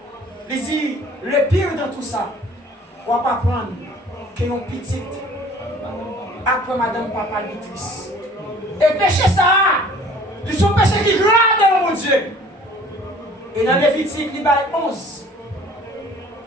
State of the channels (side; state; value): both; normal; correlation 0.51